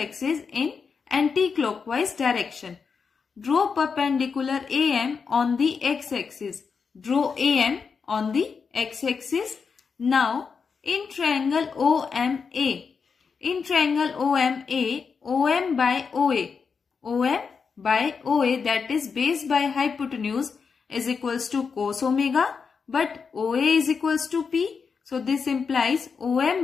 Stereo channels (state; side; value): quieter; right; 5.6 dB